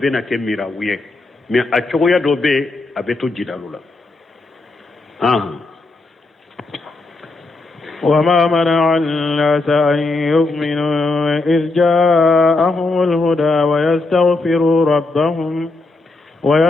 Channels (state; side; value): quieter; right; 3.3 dB